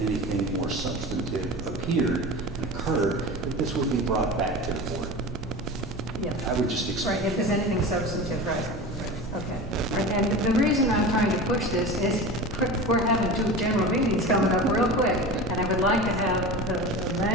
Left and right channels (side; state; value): right; noise; rumble, 12 dB below the sound